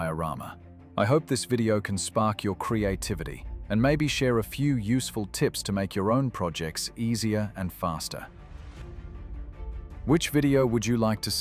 I hope this video can spark your creativity and maybe share a few useful tips to make your own projects easier and faster. Which video would you like to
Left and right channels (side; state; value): both; identical; correlation 1.00